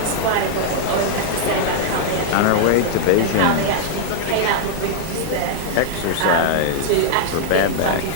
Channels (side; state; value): both; different; correlation -0.01